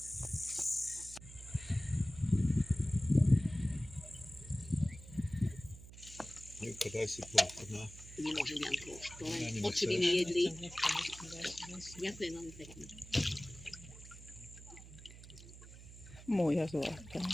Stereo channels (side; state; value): right; noise; hum, 16 dB below the sound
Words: Daj si plochu, no. Nemôžem vám plošku, len oči by mi jedli. Ďakujem veľmi pekne. Moja zlata.